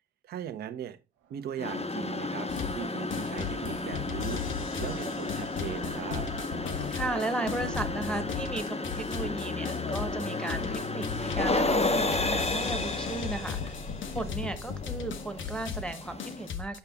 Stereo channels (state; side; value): normal; both; correlation 0.41